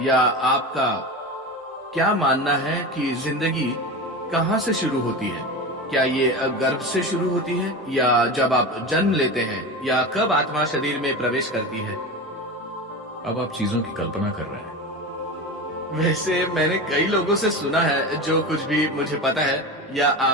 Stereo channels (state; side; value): normal; both; correlation 0.25